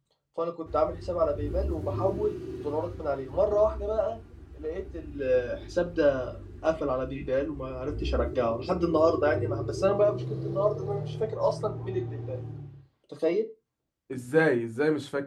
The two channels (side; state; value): both; identical; correlation 1.00